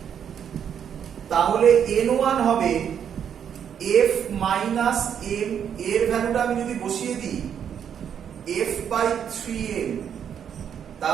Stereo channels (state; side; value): quieter; left; 8.4 dB